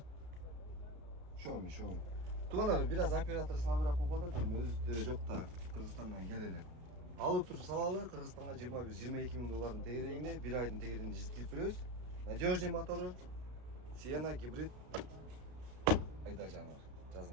Шоу. Туганар, бир аз оператор слабыраак болуп атат, өзү жок да, Кыргызстандан келелер. Алып туруп салалы, Кыргызстанга $21-22 тегерегинде, бир айдын тегерегинде жеткирип беребиз. Надежный мотору, Sienna гибрид. Айда жанар,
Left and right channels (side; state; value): left; late; 33 ms